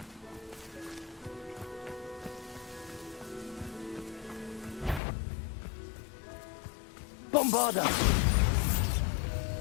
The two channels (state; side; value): drops out; right; at 5.0 s